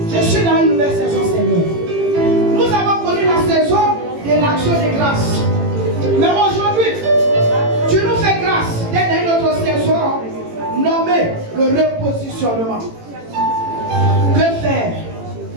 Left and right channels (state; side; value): late; left; 18 ms